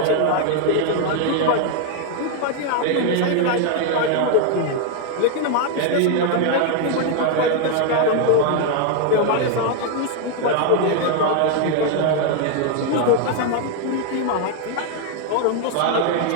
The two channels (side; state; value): both; different; correlation 0.00